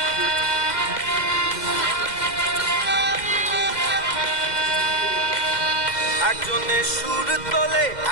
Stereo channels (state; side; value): late; right; 2.1 ms